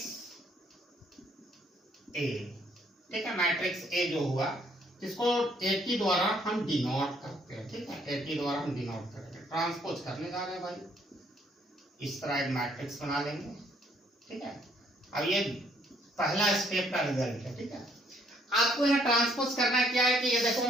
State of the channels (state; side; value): normal; both; correlation 0.66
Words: A. ठीक है, मैट्रिक्स ए जो हुआ इसको 80 द्वारा हम डिनोट करते हैं। ठीक है, 80 द्वारा हम डिनोट करेंगे। ट्रांसपोज करने जा रहे हैं भाई, इस तरह एक मैट्रिक्स बना लेंगे। ठीक है, अब ये पहला स्टेप का रिजल्ट है। ठीक है, आपको यहाँ ट्रांसपोज करना क्या है कि ये देखो